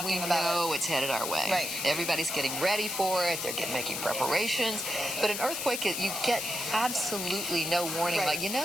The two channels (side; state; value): left; noise; hiss, 4 dB below the sound